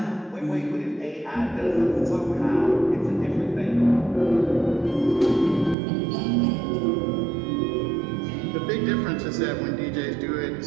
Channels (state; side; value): drops out; left; at 5.8 s